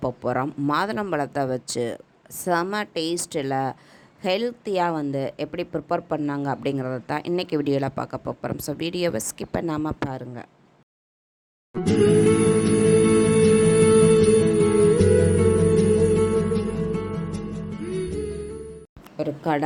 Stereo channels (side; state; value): both; identical; correlation 1.00